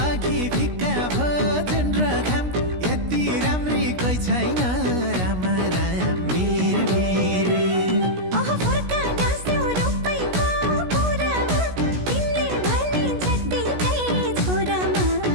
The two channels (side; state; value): left; late; 16 ms